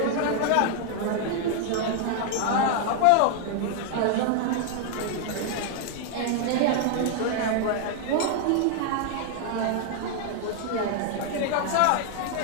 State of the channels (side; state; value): both; different; correlation 0.00